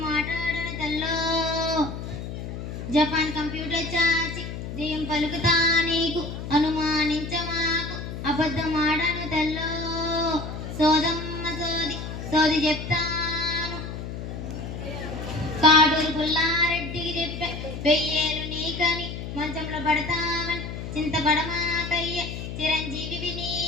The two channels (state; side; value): noise; left; hum, 7 dB below the sound